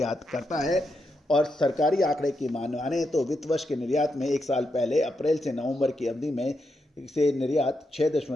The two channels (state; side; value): normal; both; correlation 0.84